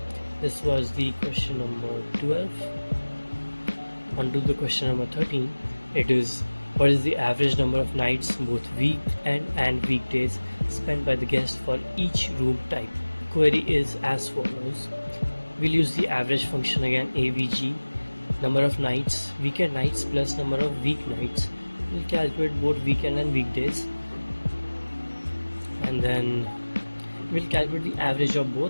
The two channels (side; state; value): both; inverted; correlation -1.00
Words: This was the question number 12. On to the question number 13. It is, what is the average number of nights, both weekend and weekdays, spent by the guest for each room type? Query is as follows. We'll use the average function again, AVG, number of nights, weekend nights plus number of weeknights. We'll calculate both weekend and weekdays, and then we'll calculate the average of